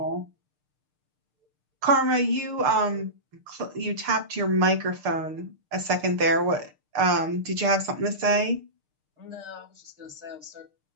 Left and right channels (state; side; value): late; left; 6.6 ms